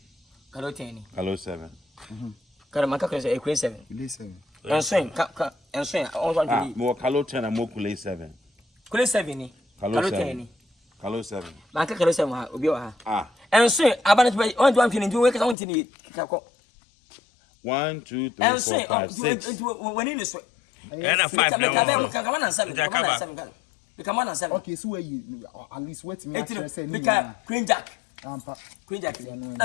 Kalo 10. Kalo 7. Kalo maka Kalo 7. Listen. Ensoin on one Ah, to more Kalo 10 and more Kule 7. Kalo 7 ni. Kalo Kalo 7. 10 ni. Kalo 7. Maka Kalo 7 ha obi wa ha. Ah. Ensoin abana to on to amfini ndu we ka on tini kako. 1, 2, 3, 4, 5, 6. When in so. And a 5 now. Come on and 7. Come on and 7. Okay, so where you at least wait me actually say me can Queen Jack. Ampa. Queen Jack. Na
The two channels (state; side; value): drops out; right; at 15.6 s